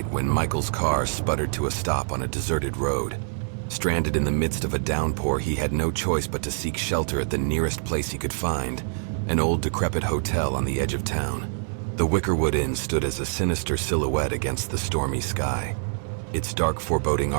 when Michael's car sputtered to a stop on a deserted road. Stranded in the midst of a downpour, he had no choice but to seek shelter at the nearest place he could find, an old decrepit hotel on the edge of town. The Wickerwood Inn stood as a sinister silhouette against the stormy sky. Its dark, foreboding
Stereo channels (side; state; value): left; silent; 58 dB below the other